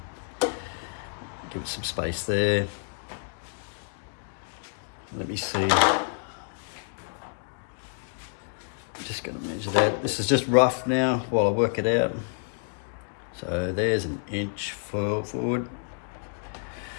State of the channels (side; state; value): right; silent; digital silence